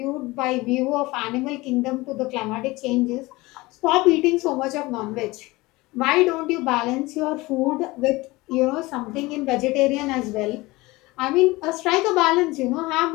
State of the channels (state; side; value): quieter; right; 21.3 dB